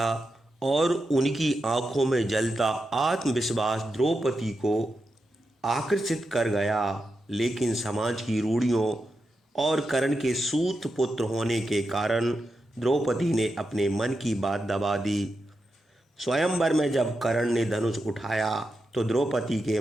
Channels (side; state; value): both; normal; correlation 0.88